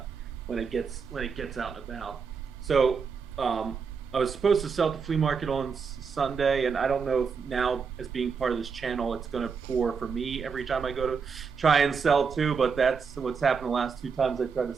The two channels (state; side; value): quieter; left; 5.7 dB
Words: it gets out and about. So I was supposed to sell at the flea market on Sunday, and I don't know if now, as being part of this channel, it's going to pour for me every time I go to try and sell too. But that's what's happened the last 2 times I tried to